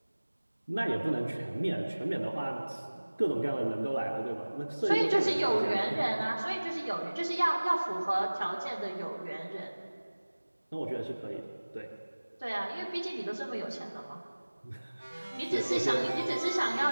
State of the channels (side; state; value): both; inverted; correlation -1.00